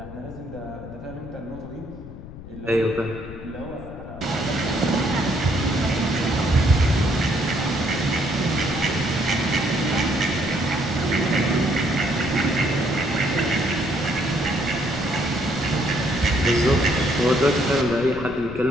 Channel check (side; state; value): left; noise; rumble, 14 dB below the sound